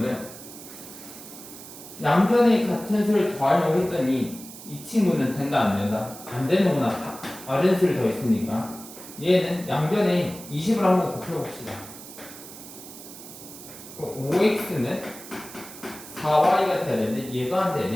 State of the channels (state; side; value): noise; right; hiss, 15 dB below the sound